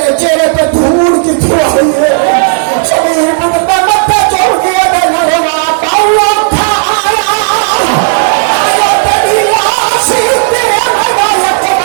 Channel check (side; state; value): left; silent; digital silence